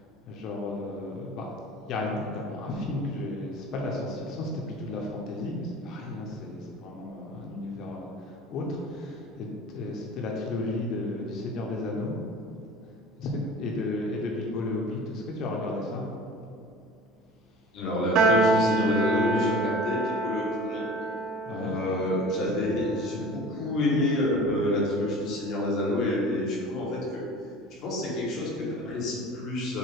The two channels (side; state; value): both; normal; correlation 0.41